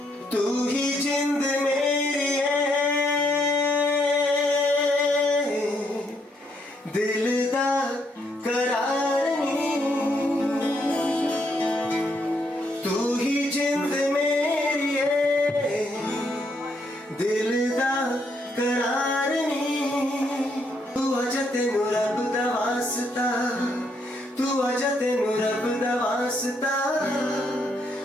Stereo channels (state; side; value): normal; both; correlation 0.74